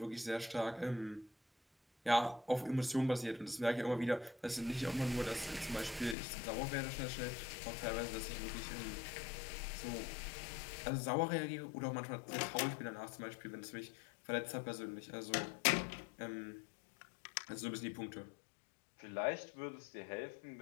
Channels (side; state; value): right; drops out; at 6.2 s